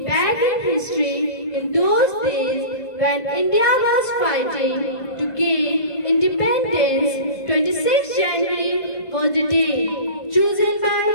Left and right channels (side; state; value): right; late; 1.7 ms